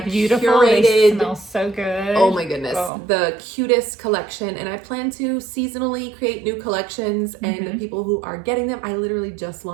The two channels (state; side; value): drops out; left; at 2.9 s